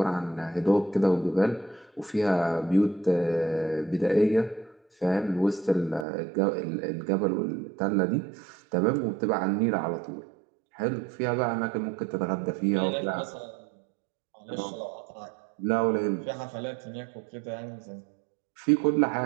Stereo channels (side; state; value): left; drops out; at 6.1 s